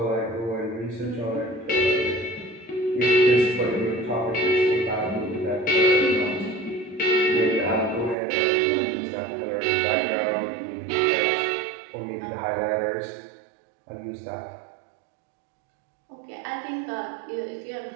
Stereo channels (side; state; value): left; drops out; at 8.2 s